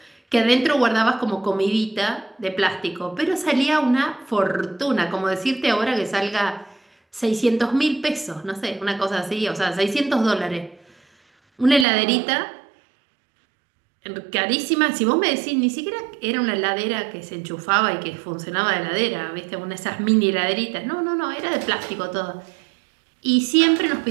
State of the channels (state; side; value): drops out; left; at 11.9 s